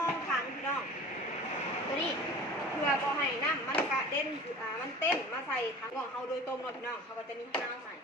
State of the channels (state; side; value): normal; both; correlation 0.40